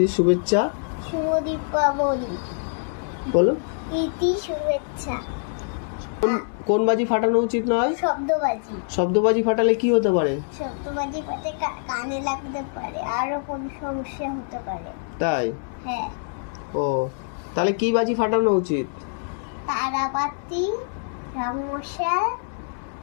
শুভেচ্ছা। শুভ দীপাবলি। বলো। প্রীতি শুভেচ্ছা। কোন বাজি ফাটানো উচিত নয়? শব্দবাজি। শব্দবাজি ফাটালে কি হতে পারে? শব্দবাজি পাতে কানে লাগতে পারে, আরো কোন সমস্যা হতে পারে। তাই হ্যাঁ। ও, তাহলে কি বাজি ফাটানো উচিত? তারাবাতি, রংমশাল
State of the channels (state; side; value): silent; right; digital silence